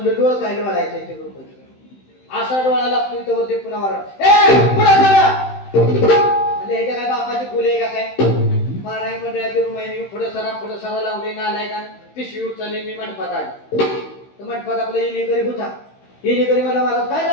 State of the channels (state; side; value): late; right; 15 ms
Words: डोळ काय डोळायचं ते बरोबर, असा डोळा लागतोय तर वरती पुन्हा वराड, पुन्हा झाला. म्हणजे ह्याच्या काय बापाची फुले आहे का काय? महाराज मंडळाची रूम आहे, पुढे सरा लावले, नालाय का पिशवी उचलली. मी मंडपात आली तर मंडपात आपला येणेकरी होता. येणेकरी मला महाराज काय